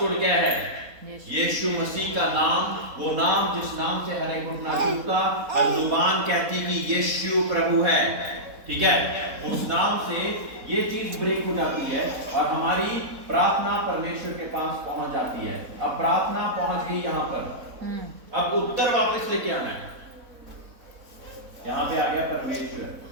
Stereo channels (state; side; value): late; left; 4.1 ms